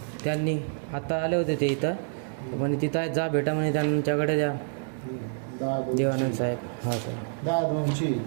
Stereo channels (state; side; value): silent; left; digital silence